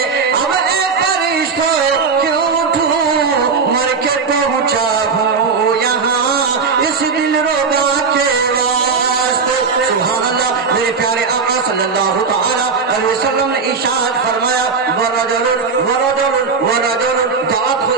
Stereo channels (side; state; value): left; quieter; 5.1 dB